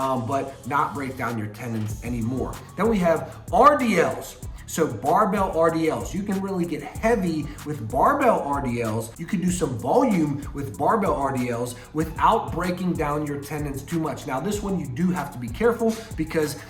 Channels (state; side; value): identical; both; correlation 1.00